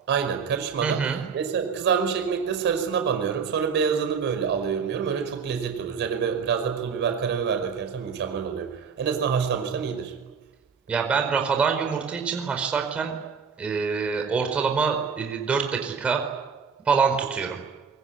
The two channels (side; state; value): left; quieter; 6.1 dB